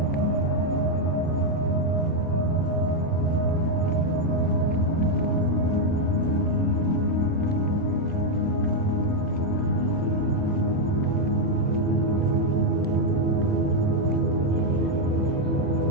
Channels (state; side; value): normal; both; correlation 0.01